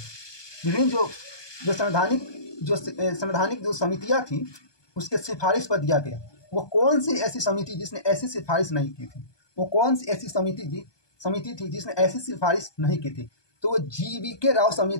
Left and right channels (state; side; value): late; right; 1.2 ms